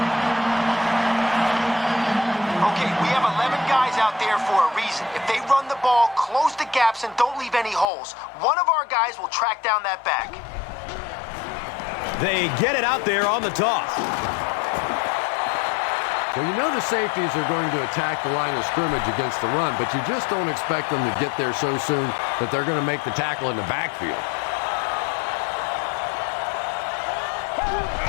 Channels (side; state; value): right; drops out; at 7.9 s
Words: Okay, we have 11 guys out there for a reason. If they run the ball, close the gaps, and don't leave any holes, one of our guys will track down that back. They get it out there on the toss. Well, you know the safeties are going to attack the line of scrimmage against the run, but you just don't expect them to get there so soon that they're going to make the tackle in the backfield.